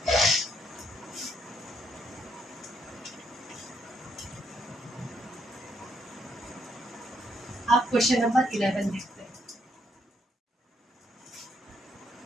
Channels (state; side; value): normal; both; correlation 0.73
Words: आप क्वेश्चन नंबर 11 देखते हैं।